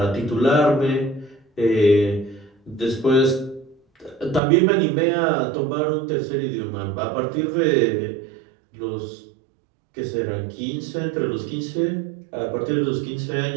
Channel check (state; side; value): drops out; left; at 4.4 s